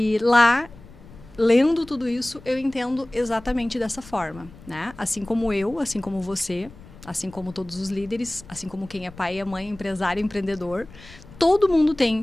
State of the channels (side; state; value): left; noise; rumble, 20 dB below the sound